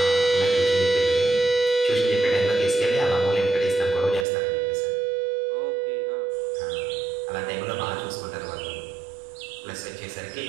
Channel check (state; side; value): drops out; left; at 4.2 s